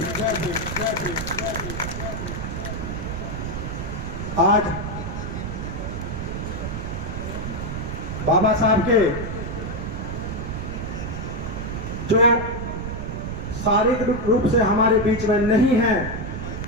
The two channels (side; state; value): right; noise; rumble, 5 dB below the sound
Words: आज बाबा साहब के जो शारीरिक रूप से हमारे बीच में नहीं है,